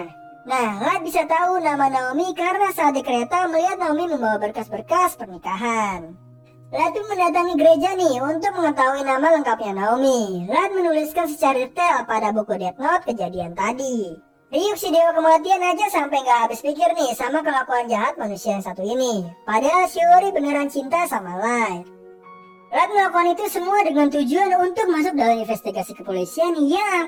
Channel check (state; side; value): identical; both; correlation 1.00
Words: Nah, Light bisa tahu nama Naomi karena saat di kereta melihat Naomi membawa berkas-berkas pernikahan. Light pun mendatangi gereja nih untuk mengetahui nama lengkapnya Naomi. Light menuliskan secara detail pada buku Death Note kejadian tadi. Ryuk si dewa kematian aja sampai gak habis pikir nih sama kelakuan jahat manusia yang satu ini. Padahal Shiori beneran cinta sama Light. Light melakukan itu semua dengan tujuan untuk masuk dalam investigasi kepolisian yang